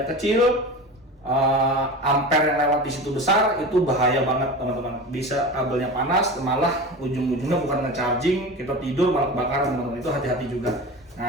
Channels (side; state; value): both; normal; correlation 0.31